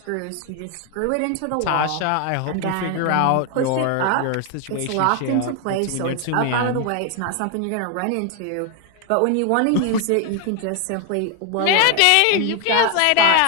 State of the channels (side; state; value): both; different; correlation 0.01